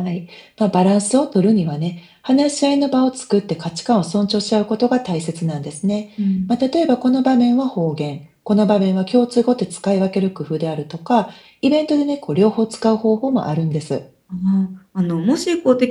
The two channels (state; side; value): identical; both; correlation 1.00